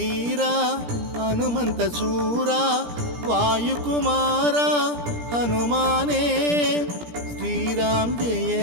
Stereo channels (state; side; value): late; left; 17 ms